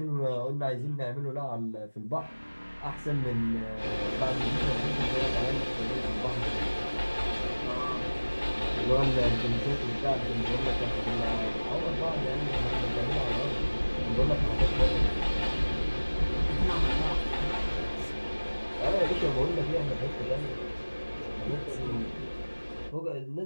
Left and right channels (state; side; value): inverted; both; correlation -1.00